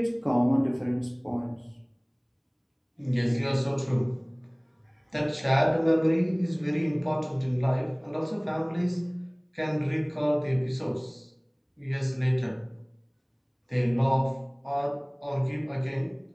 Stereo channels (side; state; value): both; identical; correlation 1.00